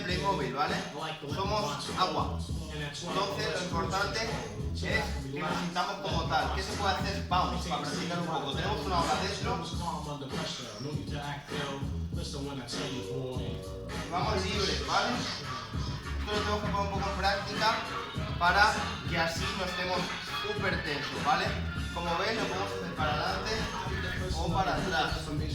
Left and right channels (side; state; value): both; identical; correlation 1.00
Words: ¿vale? Somos agua. Entonces lo importante es que nos sintamos como tal. ¿Qué se puede hacer? Vamos, para practicar un poco. Tenemos una hora dentro. Vamos libres, ¿vale? Esto lo tenemos que poner un poco en práctica para que así no estemos súper tensos, ¿vale? Como ven, lo podemos hacer para adelante o para atrás,